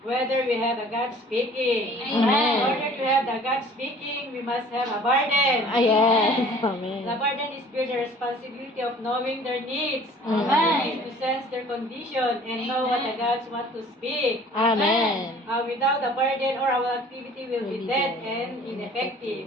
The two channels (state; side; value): normal; both; correlation 0.50